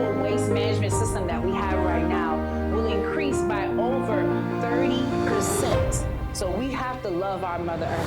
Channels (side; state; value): both; identical; correlation 1.00